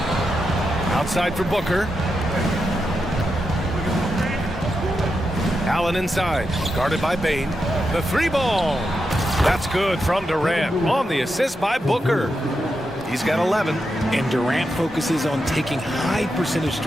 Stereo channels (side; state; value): both; normal; correlation 0.86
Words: Outside for Booker. Allen inside. Guarded by Bane. The 3 ball. That's good from Durant. On the assist by Booker. He's got 11. And Durant focuses on taking high percentage